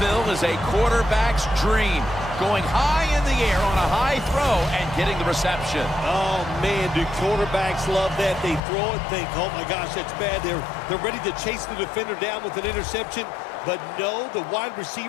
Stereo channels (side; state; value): right; drops out; at 8.6 s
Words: is a quarterback's dream. Going high in the air on a high throw and getting the reception. Oh, man, do quarterbacks love that? They throw it, think, oh, my gosh, that's bad. They're ready to chase the defender down with an interception. But no, the wide